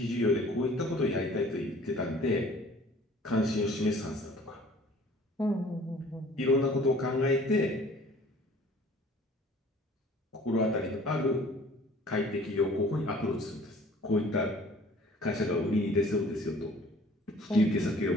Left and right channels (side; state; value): both; normal; correlation 0.52